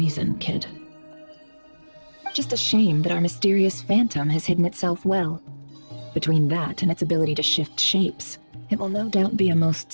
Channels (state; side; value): inverted; both; correlation -1.00